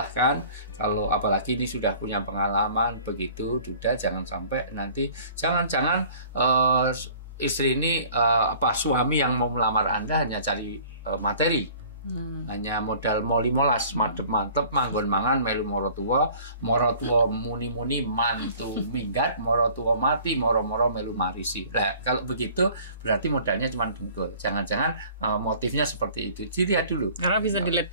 Kalau apalagi ini sudah punya pengalaman begitu, sudah jangan sampai nanti jangan-jangan istri ini suami yang mau melamar Anda hanya cari materi. Hanya modal moli molas mantep manggon mangan melu moro tua muni mantu minggat moro tua mati moro melu marisi. Nah, kalau begitu berarti modalnya cuma dengkul. Jangan-jangan motifnya seperti itu. Dilihat dulu. Karena bisa dilihat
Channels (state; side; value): inverted; both; correlation -0.50